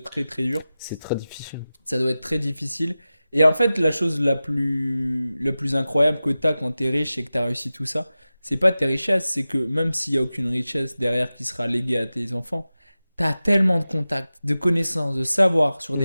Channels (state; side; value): inverted; both; correlation -0.95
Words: très très dur. C'est très difficile. Ça doit être très difficile. Et en fait, la chose la plus incroyable que tu as quand tu es riche et que tu as réussi tout ça, c'est pas tes richesses, c'est que même s'il n'y a aucune richesse derrière qui sera léguée à tes enfants, tu as tellement de contacts, de connaissances, de savoir sur